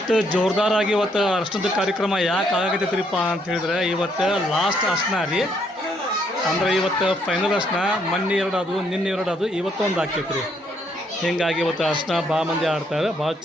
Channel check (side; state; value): both; normal; correlation 0.71